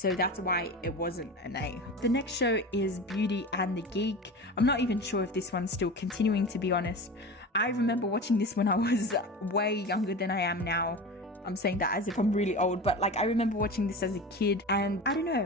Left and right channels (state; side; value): normal; both; correlation 0.30